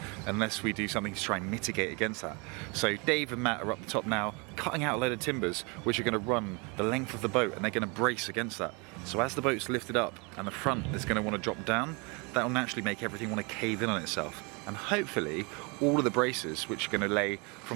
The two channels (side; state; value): left; quieter; 30.3 dB